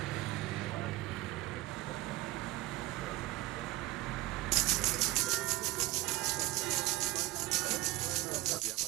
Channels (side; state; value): left; quieter; 17.6 dB